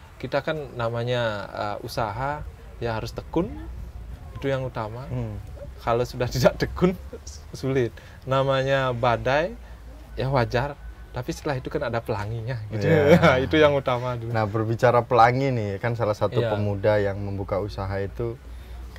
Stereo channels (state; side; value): identical; both; correlation 1.00